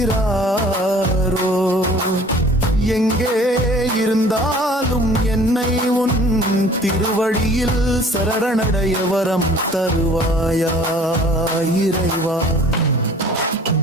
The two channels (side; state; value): both; normal; correlation 0.50